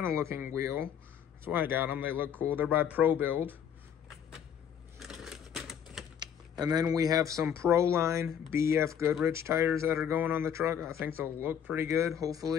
of looking wheel. That's why I got them. They look cool. They're by Pro Build. And then we have some Proline BF Goodrich tires that are going on the truck. I think they'll look pretty good.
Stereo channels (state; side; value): quieter; right; 8.5 dB